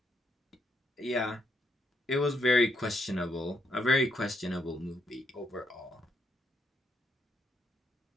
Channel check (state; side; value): normal; both; correlation 0.77